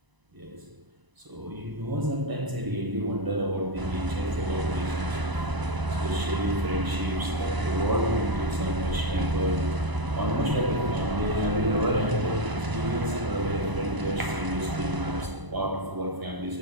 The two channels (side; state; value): left; late; 1.0 ms